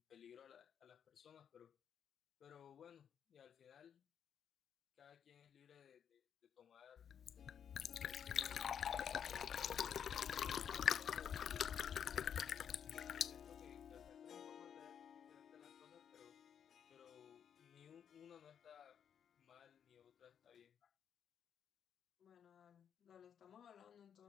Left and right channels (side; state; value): right; quieter; 8.3 dB